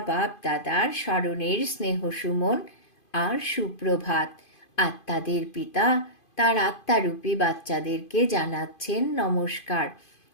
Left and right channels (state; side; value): late; right; 2.5 ms